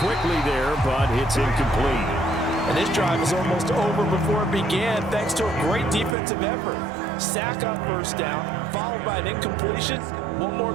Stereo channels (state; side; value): drops out; left; at 6.2 s